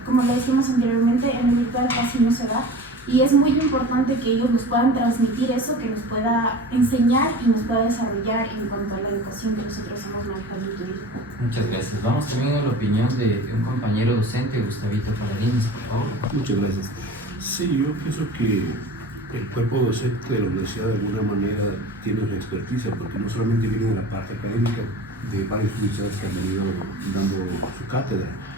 como lo decíamos anteriormente, en el virtual casi no se da. Y es muy importante que ellos nos puedan transmitir eso, que nos pueda enseñar y nos pueda desarrollar en cuanto a la educación que nosotros hemos manejado en el turismo. Muchas gracias. Vamos también a la opinión de un compañero docente, Gustavito Paladines, por favor. Muchas gracias. Sí, yo pienso que el cuerpo docente de la universidad de alguna manera tiene su experticia, porque no solamente viene de la parte académica de varias universidades que han venido dando su cátedra,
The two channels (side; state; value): both; normal; correlation 0.37